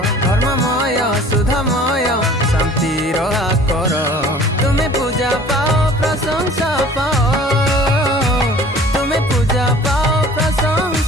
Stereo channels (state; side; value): normal; both; correlation 0.48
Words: धर्ममय सुधामय शांतिर आकर, तुम्हें पूजा पाओ प्रशंसा पाओ, तुम्हें पूजा पाओ